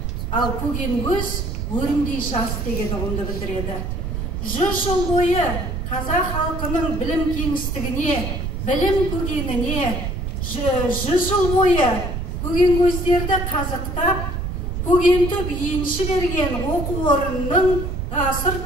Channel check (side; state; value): right; noise; rumble, 3 dB below the sound